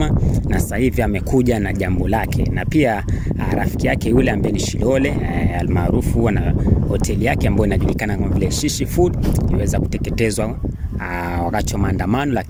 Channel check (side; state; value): both; identical; correlation 1.00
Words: na sasa hivi amekuja na jambo lake, na pia rafiki yake yule ambaye ni Shilole almaarufu na hoteli yake ambayo inajulikana kama vile Shishi Food iliweza kuteketezwa wakati wa maandamano,